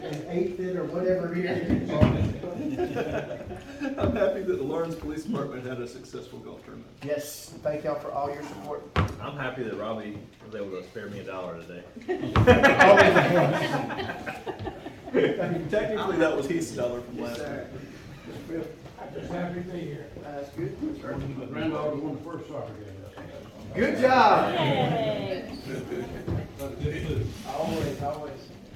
eighth it or whatever here. I'm happy that the Lawrence Police Department had a successful golf tournament. Yes, thank y'all for all your support. I'm happy that Robbie was able to spare me $1 today. Technically, that was Heath's dollar from last Sir. week. I'm just happy to be here. That's good. My granddaughter won the first soccer game. Good job. Yay. Always, always.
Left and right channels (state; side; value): identical; both; correlation 1.00